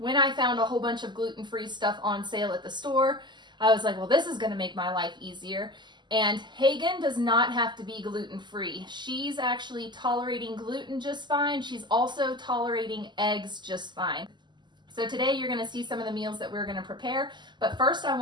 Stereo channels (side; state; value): left; late; 0.21 ms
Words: I found a whole bunch of gluten-free stuff on sale at the store, I was like, well, this is going to make my life easier. And Hagen does not have to be gluten-free. She's actually tolerating gluten just fine. She's also tolerating eggs just fine. So today you're going to see some of the meals that we're going to prepare. But first I